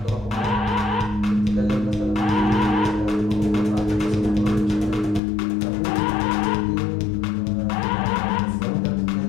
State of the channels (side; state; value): right; drops out; at 5.2 s